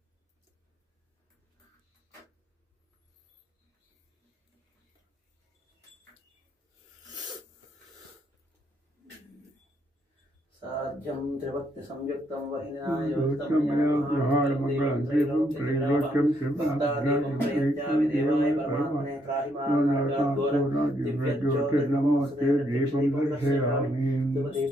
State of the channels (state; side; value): normal; both; correlation 0.74